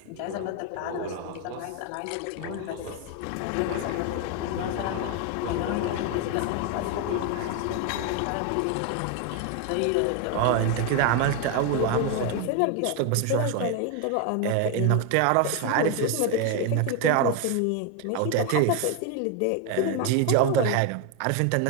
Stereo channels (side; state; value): both; different; correlation 0.01